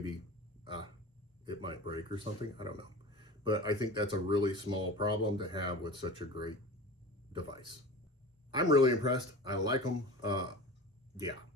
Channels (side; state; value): both; normal; correlation 0.34